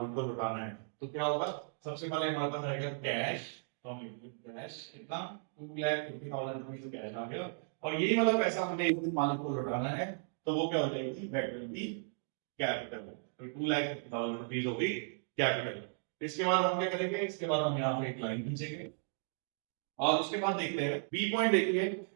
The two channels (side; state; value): left; silent; digital silence